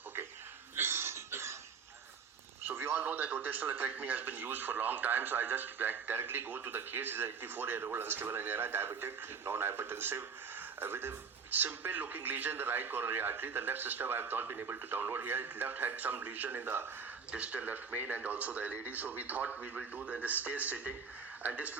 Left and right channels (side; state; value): left; quieter; 5.8 dB